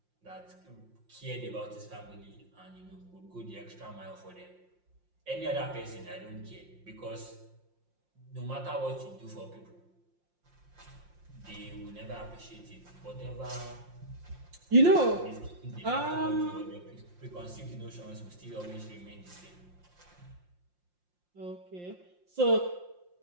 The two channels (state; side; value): late; left; 5.6 ms